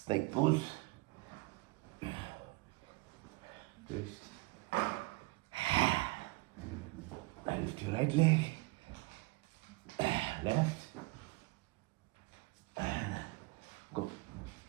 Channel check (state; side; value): quieter; left; 23.7 dB